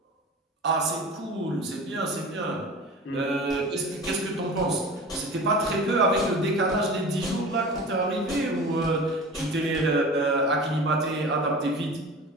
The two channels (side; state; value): both; normal; correlation 0.36